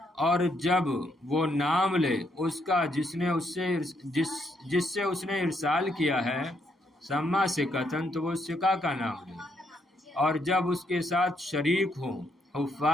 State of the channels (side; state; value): both; normal; correlation 0.75